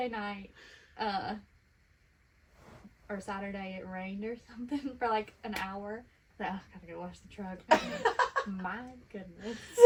night, or Saturday it rained or something for like an hour. Like, gotta go wash the truck. My goodness.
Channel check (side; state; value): both; identical; correlation 1.00